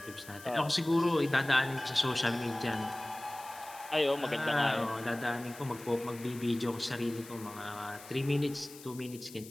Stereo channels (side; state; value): left; noise; hiss, 17 dB below the sound